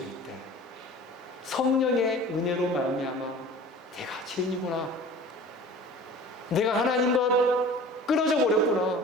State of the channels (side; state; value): both; normal; correlation 0.42